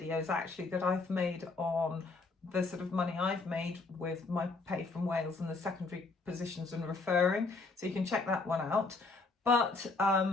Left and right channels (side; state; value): right; quieter; 3.8 dB